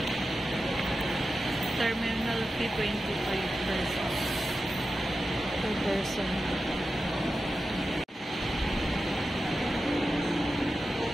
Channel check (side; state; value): both; normal; correlation 0.92